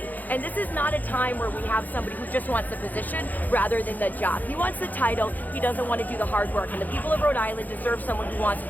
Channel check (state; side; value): late; right; 0.083 ms